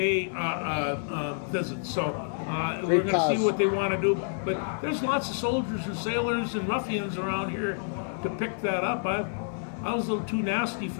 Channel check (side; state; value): right; silent; digital silence